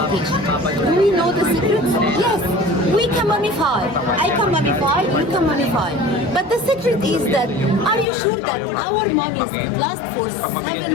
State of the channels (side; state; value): right; drops out; at 8.1 s